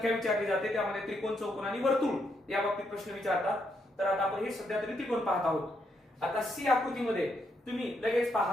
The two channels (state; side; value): normal; both; correlation 0.77